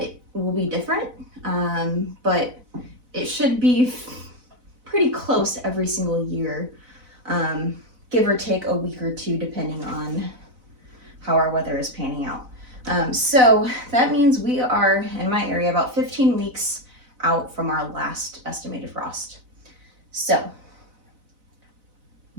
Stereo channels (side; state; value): left; late; 4.0 ms